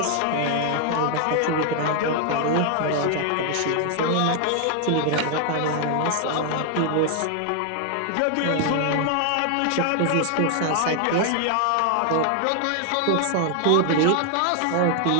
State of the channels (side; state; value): both; different; correlation 0.00